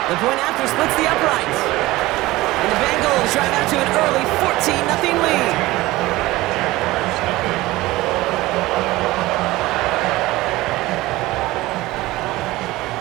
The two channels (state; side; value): quieter; left; 18.7 dB